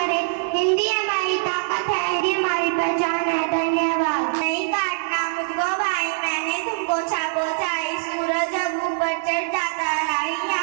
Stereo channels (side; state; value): left; silent; digital silence